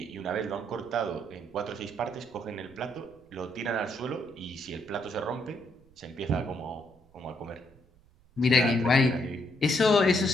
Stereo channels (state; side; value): noise; right; rumble, 29 dB below the sound